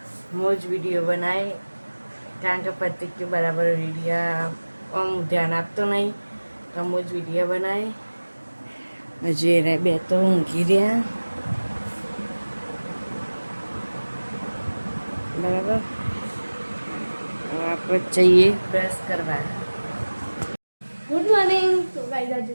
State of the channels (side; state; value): both; inverted; correlation -1.00